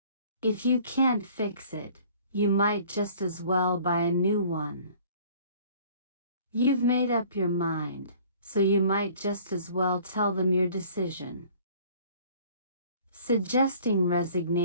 If you can't fix it, you might just as well buy a new one. You've made up your mind, so you might just as well tell them your decision. Suggesting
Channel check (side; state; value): both; inverted; correlation -0.52